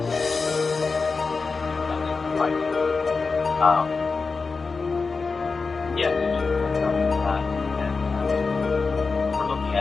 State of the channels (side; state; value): right; quieter; 4.4 dB